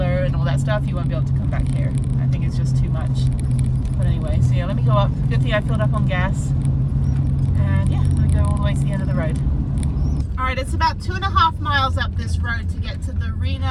and all that stuff, you won't be able to come back here. I think it's just too much. But anyway, so yeah, let me go up. Good thing I filled up on gas. And yeah, I'm gonna go all the way to the end of the road. All right, it's about 2.5 miles up this road to get to the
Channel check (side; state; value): both; identical; correlation 1.00